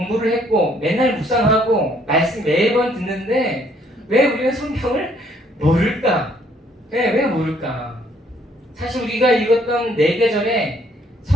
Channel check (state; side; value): normal; both; correlation 0.65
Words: 했고 맨날 묵상하고 말씀 매번 듣는데 왜 우리는 성경을 모를까? 왜 모를까? 사실 우리가 읽었던 4계절에